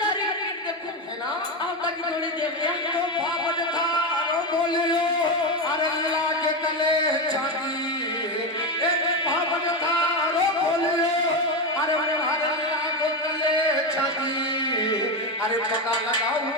देखो है ना आप की जोड़े देवया तो भावत था रो बोलियो अरे लागे तले चांदी एक भावत था रो बोलियो अरे हरे लागे तले चांदी अरे पता लगाऊं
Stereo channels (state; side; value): normal; both; correlation 0.14